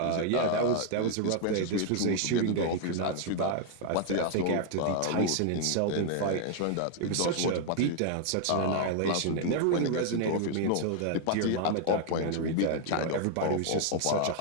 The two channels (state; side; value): different; both; correlation 0.00